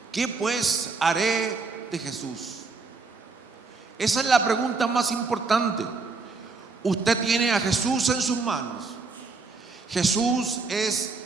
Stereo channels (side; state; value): left; quieter; 4.2 dB